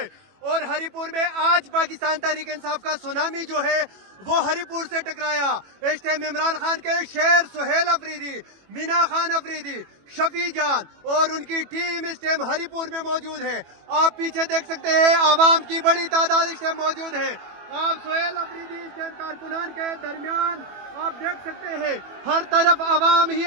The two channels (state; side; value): late; left; 21 ms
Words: और हरिपुर में आज पाकिस्तान तहरीक इंसाफ का सुनामी जो है वो हरिपुर से टकराया। इस टाइम इमरान खान के शेर सुहेल अफरीदी, मीना खान अफरीदी, शफी जान और उनकी टीम इस टाइम हरिपुर में मौजूद है। आप पीछे देख सकते हैं आवाम की बड़ी तादाद इस टाइम मौजूद है। आप सुहेल अफरीदी इस टाइम कारकुनान के दरमियान आप देख सकते हैं हर तरफ आवाम ही